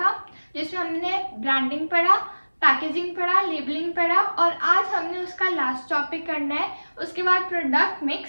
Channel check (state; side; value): inverted; both; correlation -1.00